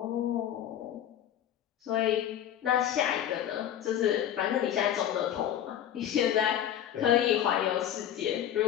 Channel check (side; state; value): right; quieter; 10.6 dB